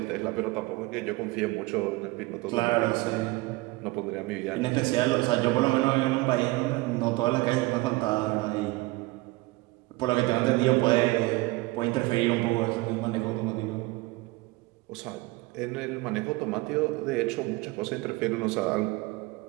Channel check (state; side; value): quieter; left; 21.9 dB